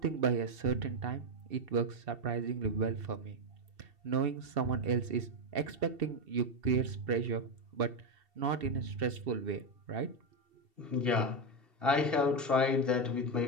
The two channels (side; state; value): left; late; 2.7 ms